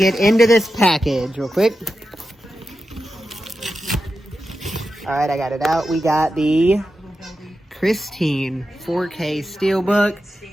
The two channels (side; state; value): both; normal; correlation 0.90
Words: into this package real quick. Alright, I got it out. We got the Christine 4K